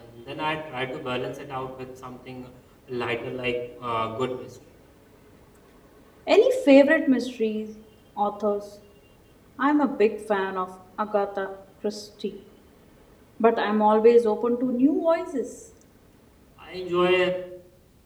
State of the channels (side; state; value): both; identical; correlation 1.00